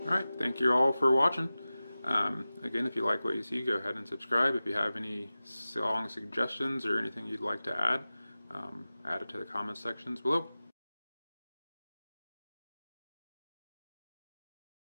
Alright, thank you all for watching. Again, if you like what you see, go ahead and subscribe. If you have any song suggestions or anything you'd like to add, add it to the comment sections below.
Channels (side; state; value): both; inverted; correlation -0.96